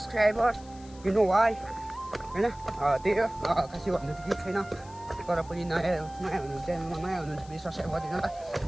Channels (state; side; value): noise; left; hiss, 23 dB below the sound